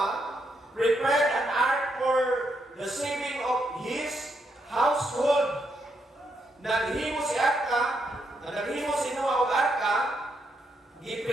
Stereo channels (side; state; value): both; normal; correlation 0.79